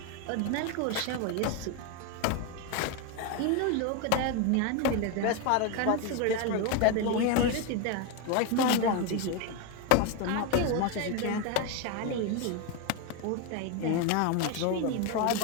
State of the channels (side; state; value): both; different; correlation 0.02